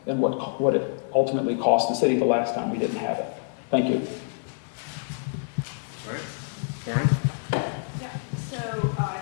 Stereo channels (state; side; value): silent; right; digital silence